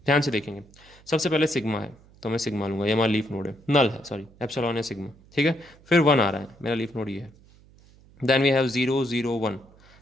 ध्यान से देखेंगे, सबसे पहले सिग्मा है तो मैं सिग्मा लूंगा, ये हमारा लीफ नोड है, नल है सॉरी, एप्सिलॉन है सिग्मा, ठीक है। फिर 1 आ रहा है, मेरा लीफ नोड ये है। देन वी हैव 001,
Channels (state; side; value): noise; right; hum, 26 dB below the sound